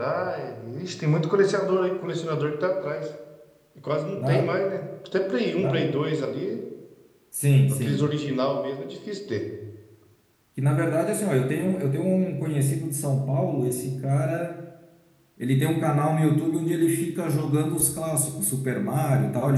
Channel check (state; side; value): identical; both; correlation 1.00